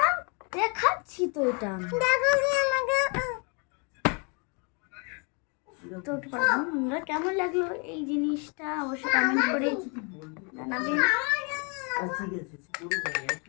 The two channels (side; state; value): right; quieter; 34.6 dB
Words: দেখাচ্ছি তো এটা। তো বন্ধুরা কেমন লাগলো এই জিনিসটা অবশ্যই কমেন্ট করে জানাবেন।